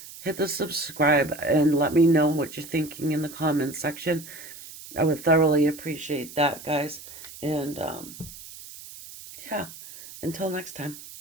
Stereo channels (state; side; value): noise; right; hiss, 15 dB below the sound